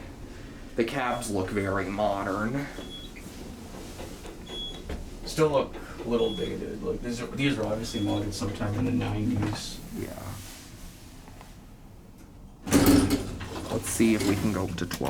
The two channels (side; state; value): both; identical; correlation 1.00